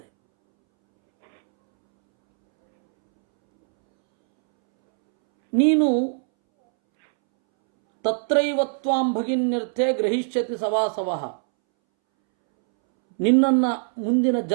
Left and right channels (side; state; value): left; silent; 64 dB below the other